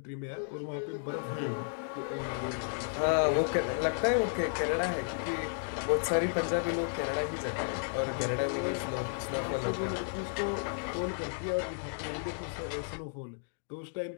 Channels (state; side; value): silent; right; digital silence